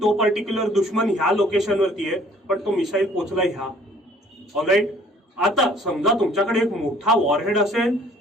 तो पर्टिक्युलर दुश्मन ह्या लोकेशनवरती आहे पण तो मिसाईल पोचला ह्या. ऑलराईट, आता समजा तुमच्याकडे एक मोठा वॉरहेड असेल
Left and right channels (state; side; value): normal; both; correlation 0.57